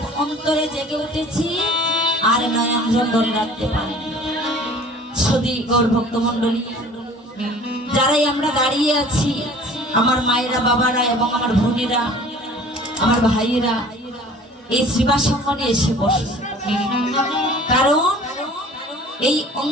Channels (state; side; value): normal; both; correlation 0.48